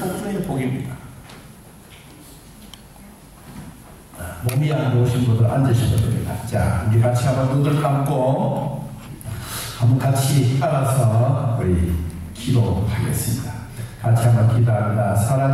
복 중의 복입니다. 몸이 안 좋으신 분들 앉으시면 됩니다. 자, 우리 같이 한번 눈을 감고 한번 같이 따라서 우리 기도하겠습니다. 같이 한번 기도합니다.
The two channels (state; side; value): identical; both; correlation 1.00